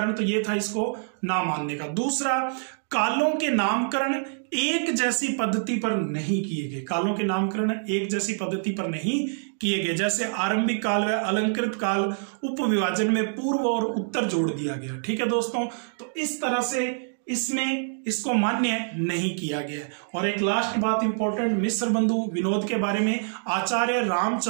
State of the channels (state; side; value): silent; left; digital silence